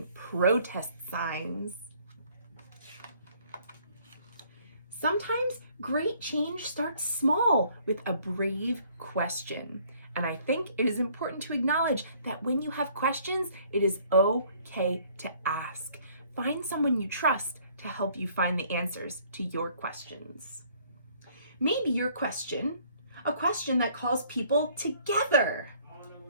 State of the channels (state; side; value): inverted; both; correlation -0.60